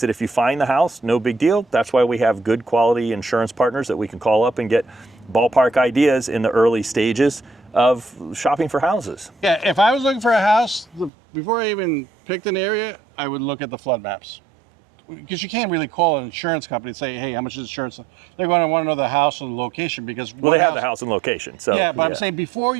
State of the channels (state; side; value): drops out; left; at 11.1 s